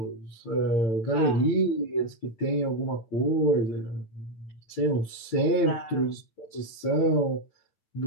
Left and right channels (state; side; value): late; right; 9.0 ms